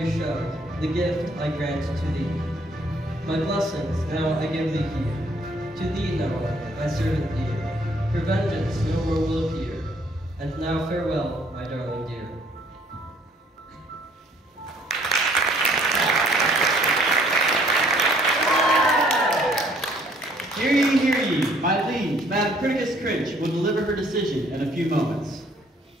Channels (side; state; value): both; normal; correlation 0.62